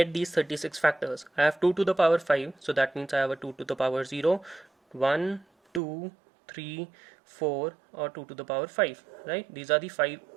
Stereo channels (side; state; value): left; drops out; at 5.8 s